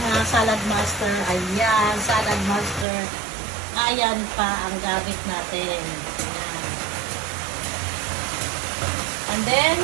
mga salad master. Ayan. Salad master. Ayan pa ang gamit natin. Ayan. And then,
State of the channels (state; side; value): drops out; left; at 2.9 s